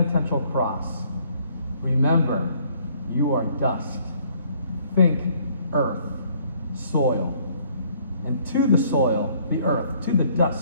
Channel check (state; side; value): inverted; both; correlation -0.62